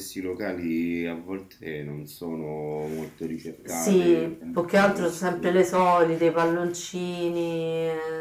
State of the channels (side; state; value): both; identical; correlation 1.00